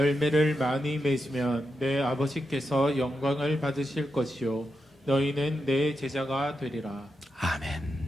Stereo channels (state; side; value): normal; both; correlation 0.87